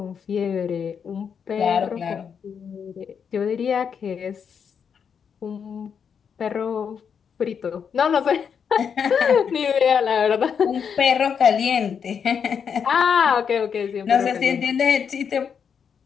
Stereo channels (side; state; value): right; quieter; 7.0 dB